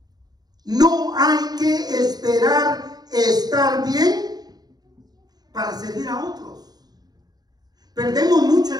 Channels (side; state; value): left; late; 0.19 ms